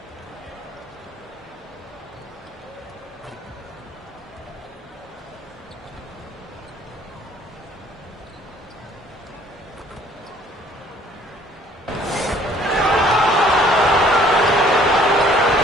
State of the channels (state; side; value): normal; both; correlation 0.58